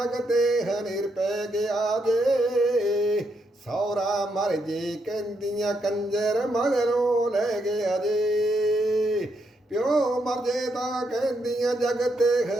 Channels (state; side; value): normal; both; correlation 0.79